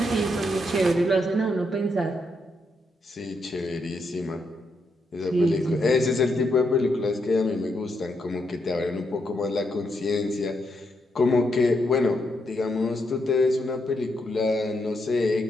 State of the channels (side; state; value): both; normal; correlation 0.80